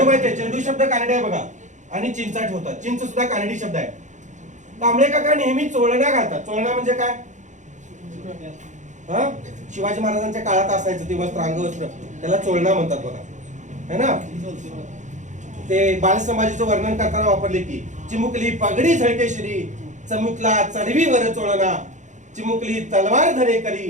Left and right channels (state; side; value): late; left; 0.35 ms